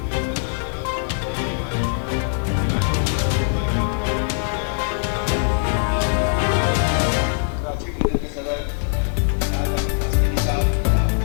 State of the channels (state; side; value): silent; right; digital silence